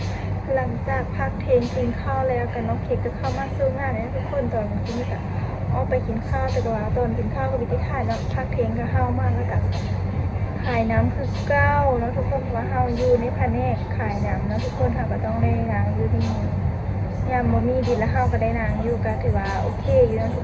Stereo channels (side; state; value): both; identical; correlation 1.00